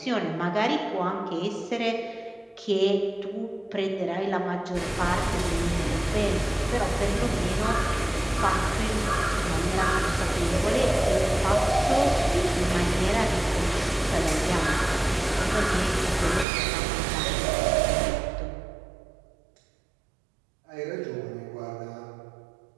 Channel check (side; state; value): left; drops out; at 16.4 s